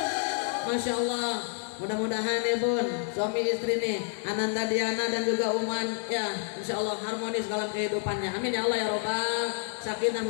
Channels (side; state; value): right; silent; 59 dB below the other